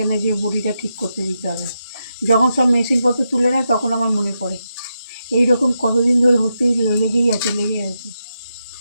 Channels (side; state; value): both; inverted; correlation -0.86